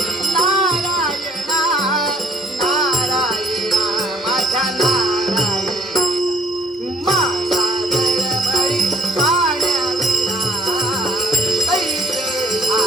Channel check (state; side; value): normal; both; correlation 0.63